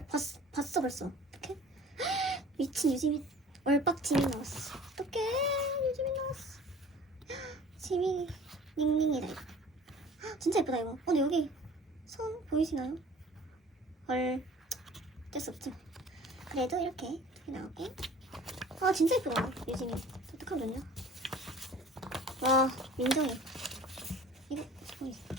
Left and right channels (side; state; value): both; normal; correlation 0.47